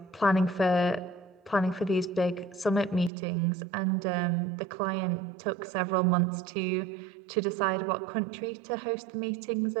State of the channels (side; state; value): left; drops out; at 3.1 s